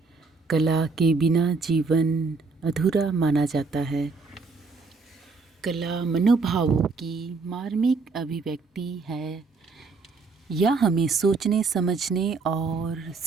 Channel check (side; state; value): left; quieter; 4.3 dB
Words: कला के बिना जीवन अधूरा माना जाता है। कला मनोभावों की मार्मिक अभिव्यक्ति है। यह हमें सोचने, समझने और